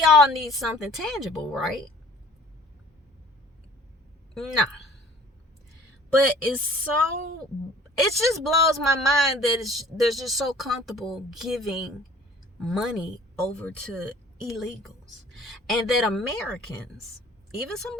all need something tangible, right? No. But it just blows my mind that they're just so comfortable giving money over to illegals. And that Americans, even some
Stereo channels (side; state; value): both; normal; correlation 0.51